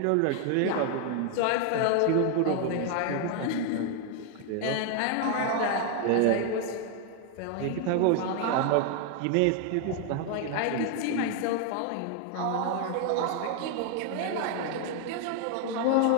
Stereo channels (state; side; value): different; both; correlation 0.00